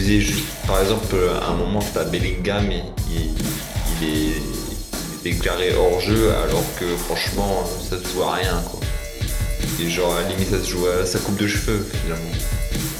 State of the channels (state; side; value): identical; both; correlation 1.00